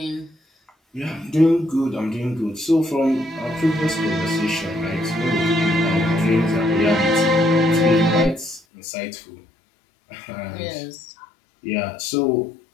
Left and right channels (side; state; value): right; drops out; at 8.6 s